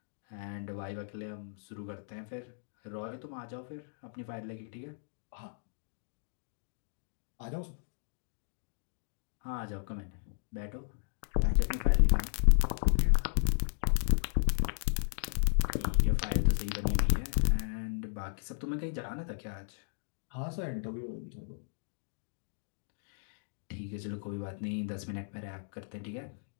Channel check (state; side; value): silent; right; digital silence